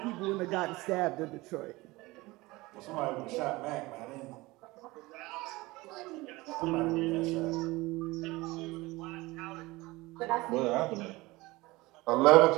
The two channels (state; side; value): quieter; left; 21.3 dB